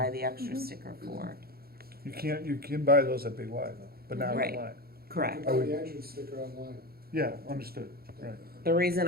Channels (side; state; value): left; late; 0.44 ms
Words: the extra sticker for. You can buy those at Big Y though, but not Right. online. Correct. You can buy the entrance sticker online. Yeah, understood, right. The reason